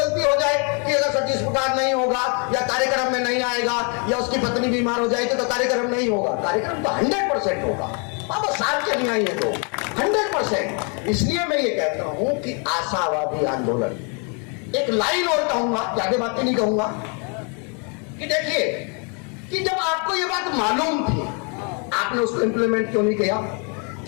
हो जाए कि अगर सतीश प्रकाश नहीं होगा या कार्यक्रम में नहीं आएगा या उसकी पत्नी बीमार हो जाएगी तो कार्यक्रम नहीं होगा? कार्यक्रम तो 100% होगा। बाबा साहब के नहीं आएंगे तो 100%। इसलिए मैं ये कहता हूं कि आशावादी आंदोलन, एक लाइन और कहूंगा, ज्यादा बातें नहीं कहूंगा, कि देखिए कि जब आपको ये बात मालूम थी, आपने उसको इंप्लीमेंट क्यों नहीं किया?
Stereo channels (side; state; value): right; quieter; 36.4 dB